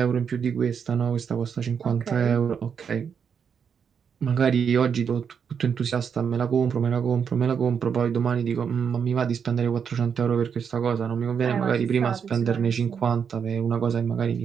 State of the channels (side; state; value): left; quieter; 7.0 dB